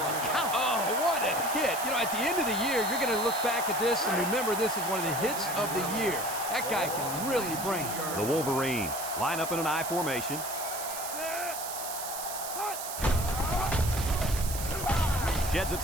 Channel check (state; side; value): noise; right; hiss, 7 dB below the sound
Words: count. Oh, what a hit. You know, at the end of the year, you're going to look back at this and remember this is one of the hits of the year. That guy can really bring it. The Wolverines line up in an I formation. Sheds a